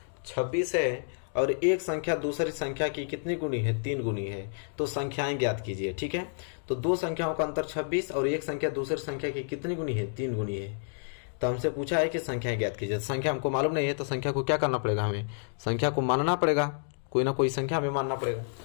26 है और एक संख्या दूसरी संख्या की कितनी गुनी है 3 गुनी है, तो संख्याएं ज्ञात कीजिए। ठीक है, तो दो संख्याओं का अंतर 26 और एक संख्या दूसरी संख्या की कितनी गुनी है 3 गुनी है। तो हमसे पूछा है कि संख्याएं ज्ञात कीजिए। संख्या हमको मालूम नहीं है तो संख्या को क्या करना पड़ेगा, हमें संख्या को मानना पड़ेगा, कोई ना कोई संख्या हमें मानना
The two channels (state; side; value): silent; right; digital silence